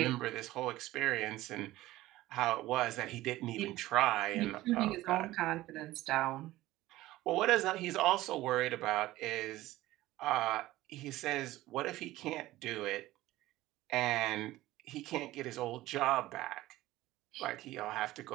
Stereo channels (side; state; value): left; quieter; 16.7 dB